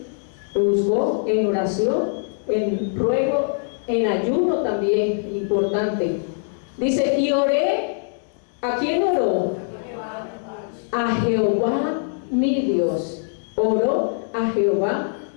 Lo buscó en oración, en ruego, en ayuno también, importante. Dice, y oré, ¿a quién oró? A Jehová mi Dios. Oró a Jehová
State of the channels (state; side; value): silent; right; digital silence